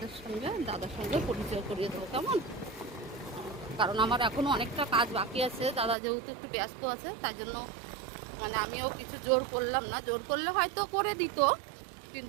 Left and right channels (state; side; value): drops out; left; at 6.0 s